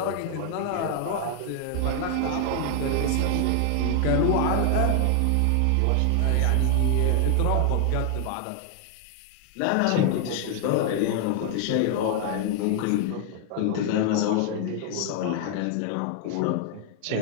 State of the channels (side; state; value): both; different; correlation 0.00